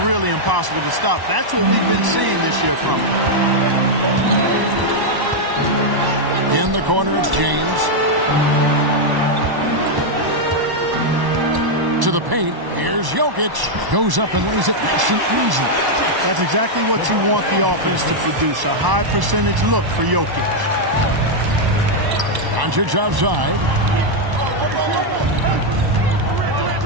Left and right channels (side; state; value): left; late; 1.1 ms